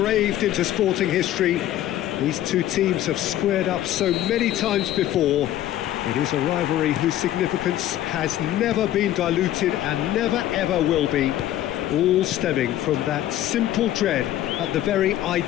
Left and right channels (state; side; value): quieter; right; 13.1 dB